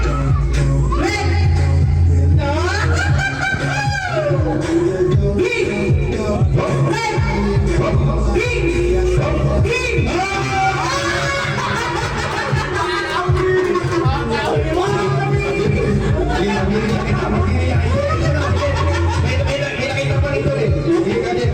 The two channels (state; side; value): identical; both; correlation 1.00